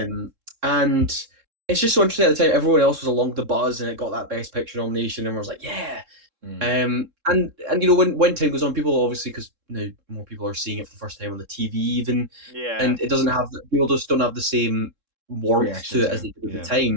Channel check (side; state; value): left; late; 3.7 ms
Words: And it's just so interesting at the time. Everyone else was along the buzz, and it got that Best Picture nomination, and I was like, yeah. Mm. And when time goes on, people obviously, because now more people are seeing it for the first time on the TV even, Yeah, and it doesn't have people just don't have the same warmth Reaction to it to as it. they did at the Yeah.